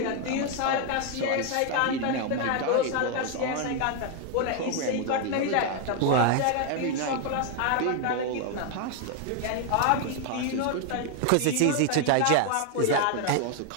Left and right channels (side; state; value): both; different; correlation 0.01